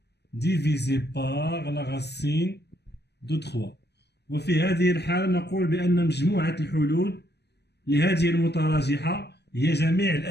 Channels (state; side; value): late; right; 0.49 ms